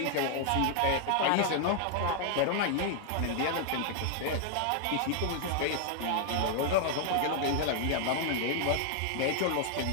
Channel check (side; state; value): both; different; correlation 0.00